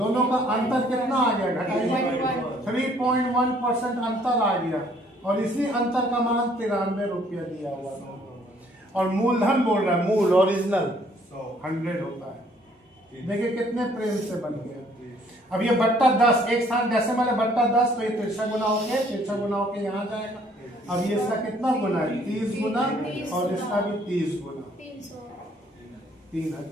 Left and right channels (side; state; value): both; normal; correlation 0.62